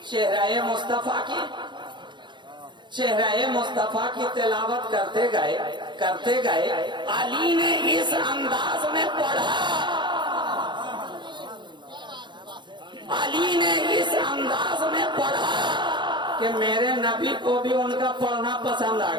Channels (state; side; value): late; left; 0.22 ms